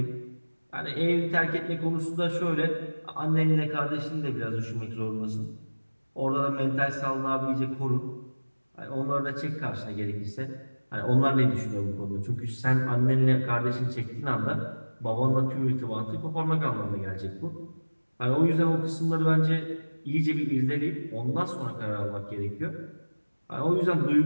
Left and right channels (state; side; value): inverted; both; correlation -1.00